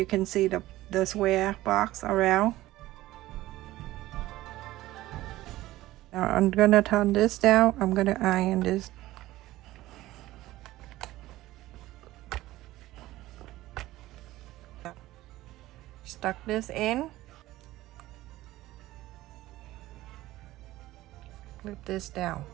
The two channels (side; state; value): left; quieter; 16.5 dB